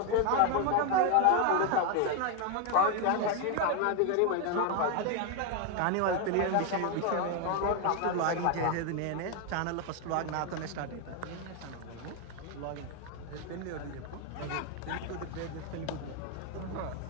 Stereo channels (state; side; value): different; both; correlation 0.01